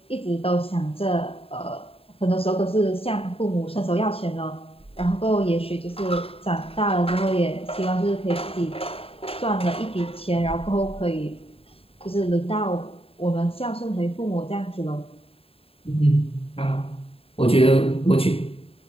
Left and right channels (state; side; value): late; right; 0.27 ms